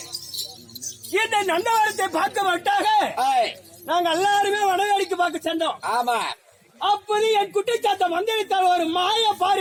இந்த நந்தவரத்தை பார்க்க மாட்டாக நாங்க எல்லாருமே வடவேடிக்கு பார்க்க சென்றோம். ஆமா. அப்போது என் குட்டிச்சாத்த மந்திரித்தால் ஒரு மாய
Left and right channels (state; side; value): identical; both; correlation 1.00